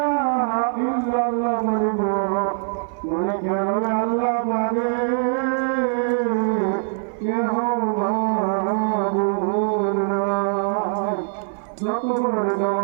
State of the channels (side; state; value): left; silent; 56 dB below the other